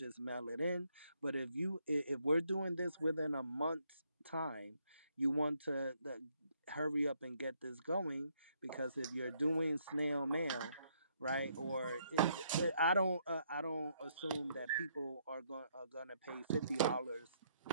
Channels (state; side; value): inverted; both; correlation -0.72